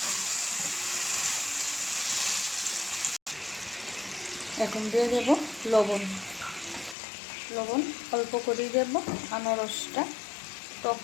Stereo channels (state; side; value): drops out; right; at 7.0 s